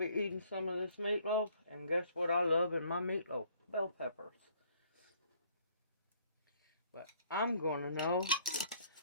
eating some of this meatloaf. And guess what I love in my meatloaf? Bell peppers. But I'm going to know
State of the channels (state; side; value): inverted; both; correlation -0.62